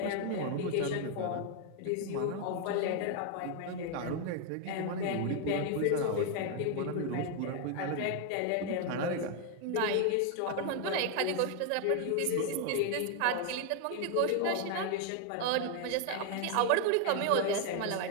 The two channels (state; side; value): different; both; correlation 0.01